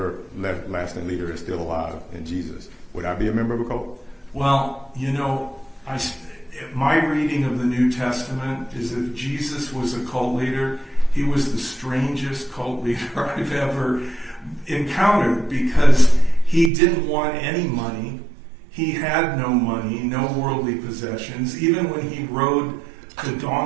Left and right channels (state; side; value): drops out; left; at 16.7 s